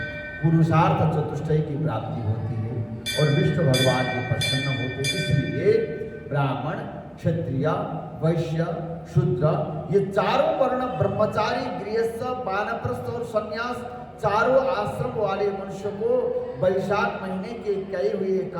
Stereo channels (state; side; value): identical; both; correlation 1.00